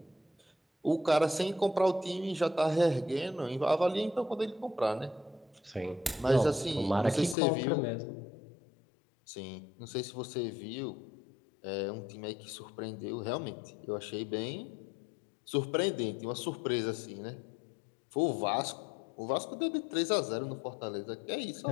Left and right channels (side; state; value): right; drops out; at 7.4 s